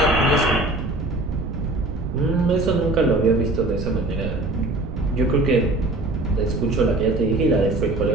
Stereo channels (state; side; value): noise; right; rumble, 5 dB below the sound